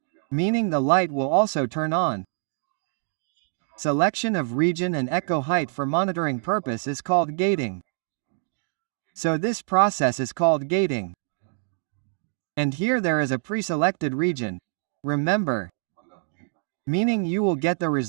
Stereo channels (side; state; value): left; silent; digital silence